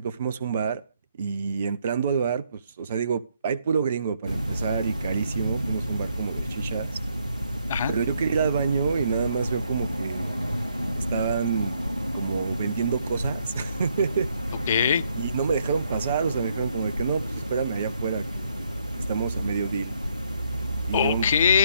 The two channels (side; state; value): both; inverted; correlation -0.73